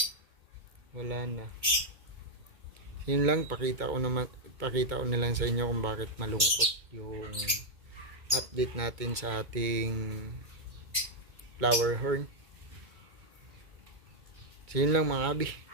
na. Yun lang, pakita ko na lang sa inyo kung bakit malungkot yung update natin sa ating flower horn. So yun lang mga abi.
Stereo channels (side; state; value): left; late; 2.2 ms